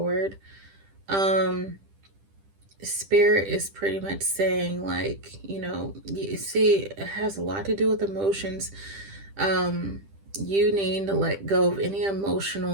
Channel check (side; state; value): left; late; 10 ms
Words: Spirit is pretty much saying, like, you see, it has a lot to do with emotions. You need to let go of any